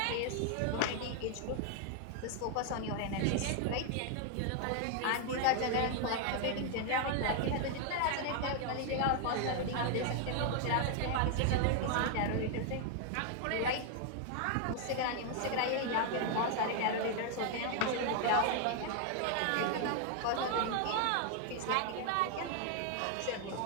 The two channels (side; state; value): both; different; correlation 0.00